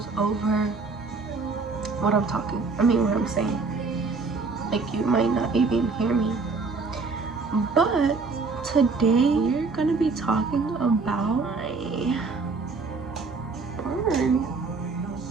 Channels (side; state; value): left; quieter; 4.2 dB